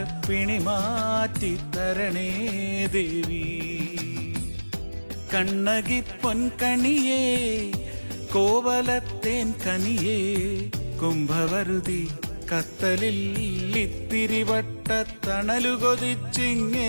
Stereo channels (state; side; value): inverted; both; correlation -1.00